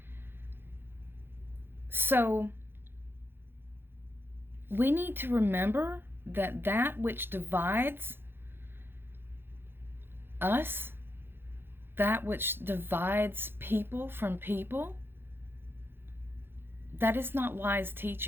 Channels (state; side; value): late; left; 0.10 ms